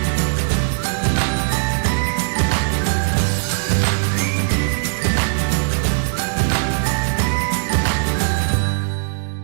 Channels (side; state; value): left; silent; 66 dB below the other